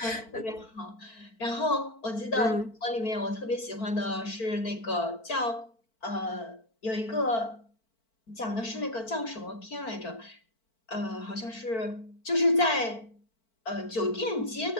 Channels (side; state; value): right; late; 4.5 ms